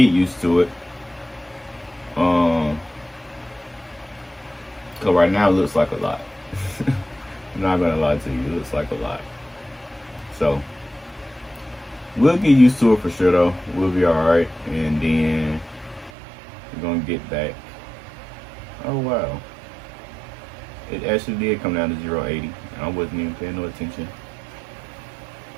used to it. So right now it looks like a lot. I'm not gonna lie to you, it looks like a lot. So we'll get used to it for sure though. We'll be alright, and then we're gonna get back. Oh wow, it actually did come down to 0.80. I wasn't even paying no attention,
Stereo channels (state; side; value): drops out; left; at 16.1 s